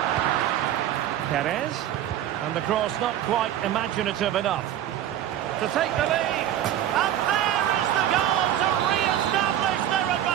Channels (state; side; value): quieter; left; 11.5 dB